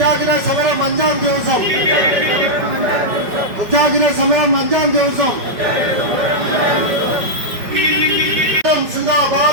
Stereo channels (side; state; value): left; late; 5.2 ms